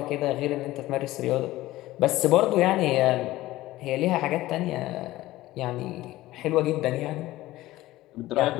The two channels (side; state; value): right; quieter; 16.8 dB